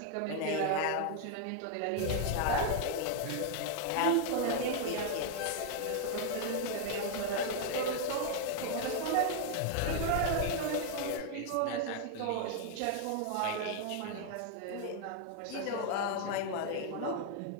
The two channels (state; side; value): different; both; correlation 0.00